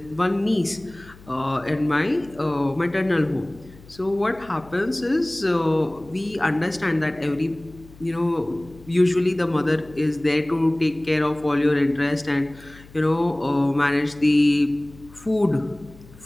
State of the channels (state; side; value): noise; left; hum, 22 dB below the sound